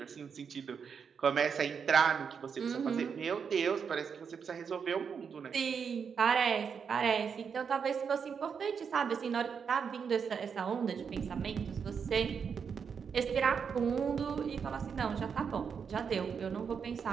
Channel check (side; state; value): left; quieter; 6.5 dB